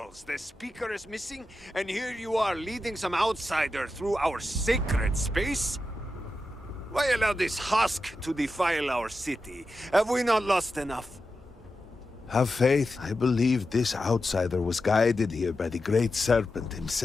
the speaker is missing, and here you are leading some outsider through our sacred space? Why allow this husk to defile our city? Have we not lost enough? Have faith. I believe this outsider was guided here by the Great Serpent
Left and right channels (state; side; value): normal; both; correlation 0.90